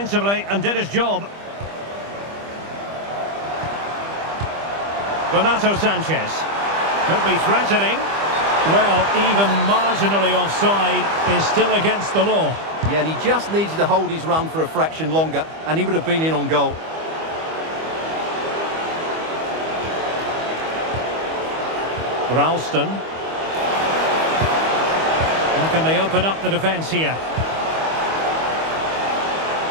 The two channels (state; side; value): late; left; 25 ms